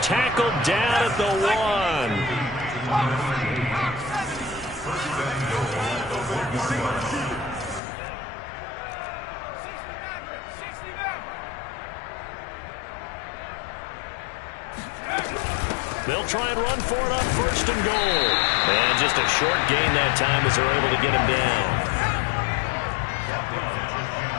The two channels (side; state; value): right; drops out; at 7.8 s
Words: Tackled down at the 1. They'll try and run for it on 1st and goal. And just a short gain that time as they're able to get him down.